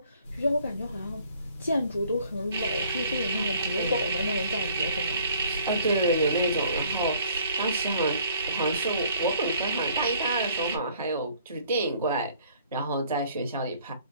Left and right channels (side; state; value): both; inverted; correlation -0.58